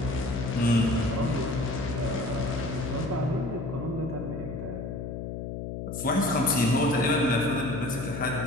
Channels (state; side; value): noise; left; hum, 6 dB below the sound